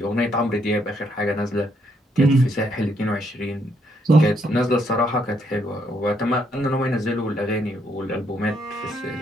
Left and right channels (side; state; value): both; normal; correlation 0.73